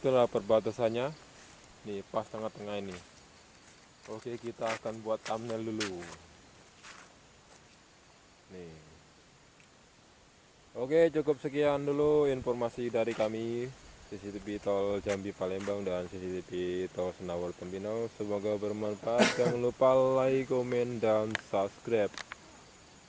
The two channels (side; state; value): both; identical; correlation 1.00